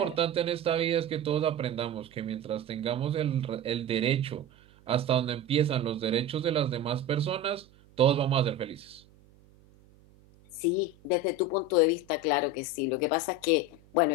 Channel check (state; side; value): noise; right; hum, 28 dB below the sound